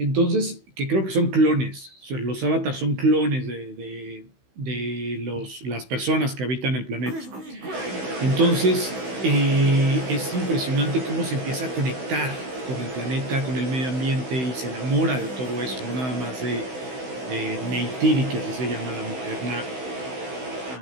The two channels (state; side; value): late; left; 16 ms